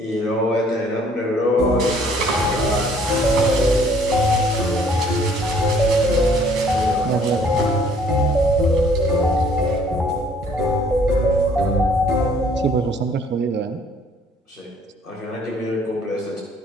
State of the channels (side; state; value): both; normal; correlation 0.60